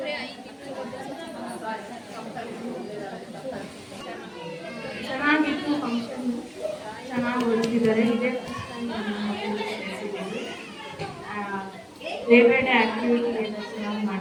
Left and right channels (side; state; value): both; identical; correlation 1.00